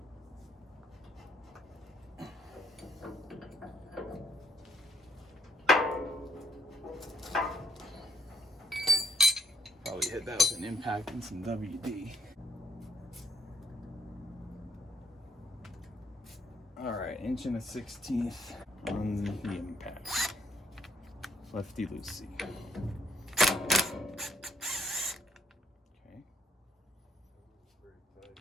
hit that with an impact and some WD. All right, 1/16 on the impact. Lefty loosey. Okay.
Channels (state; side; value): normal; both; correlation 0.69